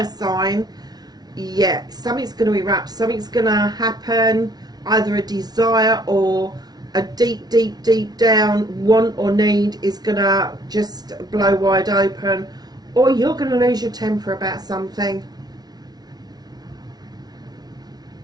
sign, yeah, something's going to erupt, something's going to happen, either a desire or a deep down want or need is going to just blow wide open, or you're going to lose your temper about something.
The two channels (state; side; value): late; left; 0.19 ms